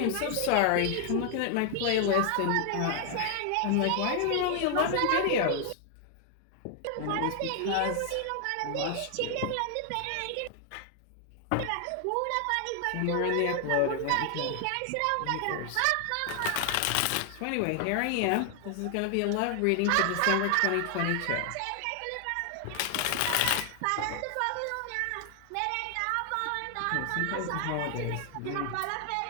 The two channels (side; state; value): both; different; correlation 0.00